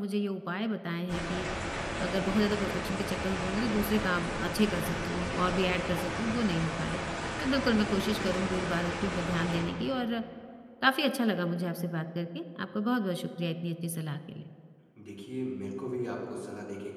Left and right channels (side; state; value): both; identical; correlation 1.00